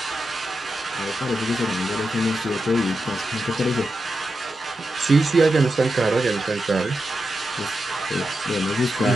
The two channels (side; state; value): both; normal; correlation 0.88